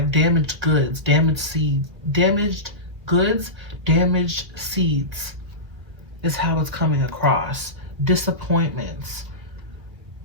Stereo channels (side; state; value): left; late; 1.7 ms